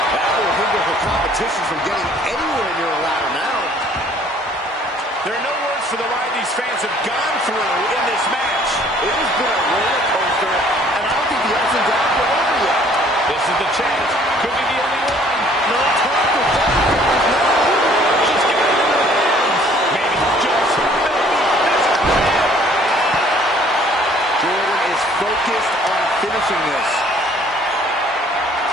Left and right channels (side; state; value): both; normal; correlation 0.58